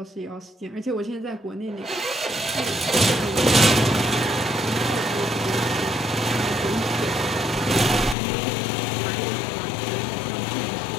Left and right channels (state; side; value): drops out; right; at 8.2 s